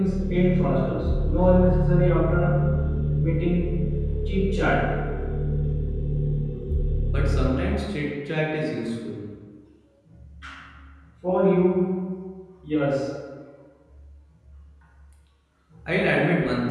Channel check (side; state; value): both; identical; correlation 1.00